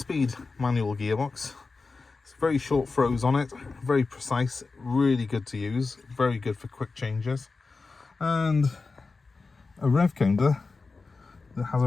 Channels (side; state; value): right; quieter; 4.1 dB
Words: manual gearbox. It's very short throws on it, very precise, really good to use, very good for quick changes, and a rev counter that has